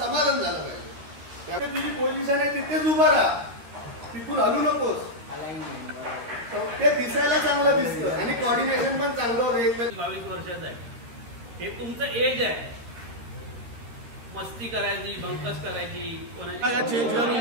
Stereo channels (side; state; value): left; late; 13 ms